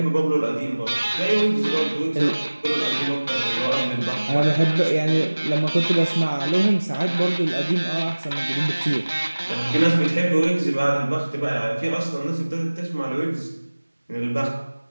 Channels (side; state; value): both; inverted; correlation -1.00